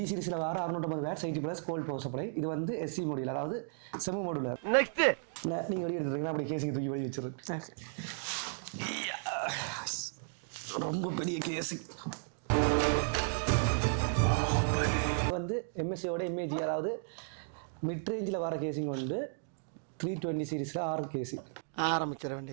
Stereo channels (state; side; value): silent; left; digital silence